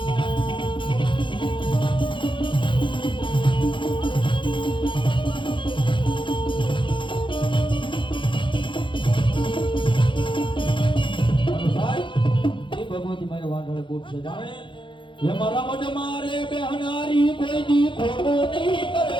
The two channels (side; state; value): right; late; 0.24 ms